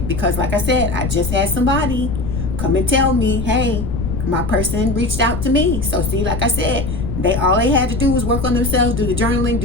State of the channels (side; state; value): left; noise; rumble, 4 dB below the sound